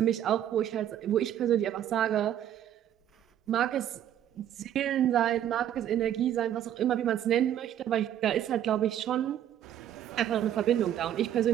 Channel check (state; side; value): quieter; left; 10.9 dB